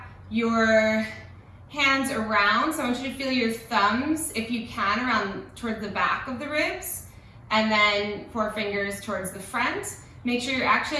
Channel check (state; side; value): identical; both; correlation 1.00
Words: your hands around, so I want you to feel your thumbs, if you can, around towards the back of the ribs, and then 4 fingers towards the front. Make sure you're actually